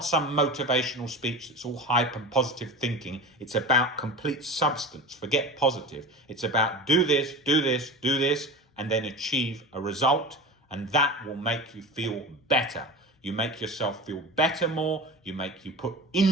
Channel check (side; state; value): both; normal; correlation 0.31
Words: some motivational speech that's all hype and positive thinking. It's about complete substance. Forget positive. It's about do this, do this, do this, and then achieve a result. And that will make you feel better. You make yourself feel better more. You put